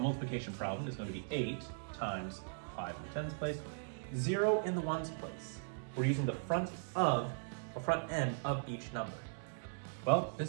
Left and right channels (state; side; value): silent; left; digital silence